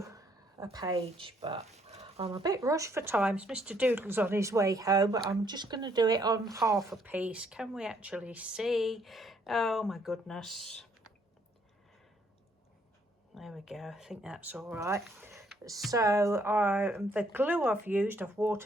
a page. But I'm a bit rushed for time. Mr. Doodle's on his way home, but I'm just going to do it on half a piece. Can we actually see? Oh my goodness. There we go. I think that's all right. So the glue I've used, I've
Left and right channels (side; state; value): both; normal; correlation 0.68